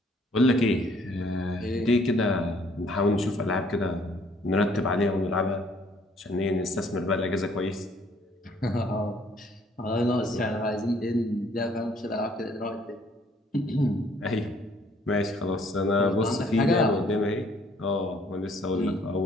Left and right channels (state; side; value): normal; both; correlation 0.62